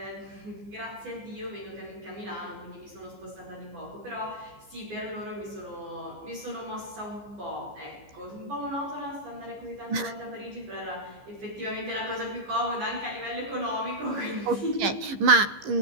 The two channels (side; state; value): left; late; 15 ms